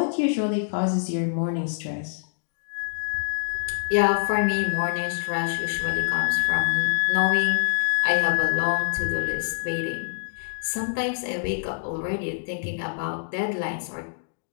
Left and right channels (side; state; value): right; silent; digital silence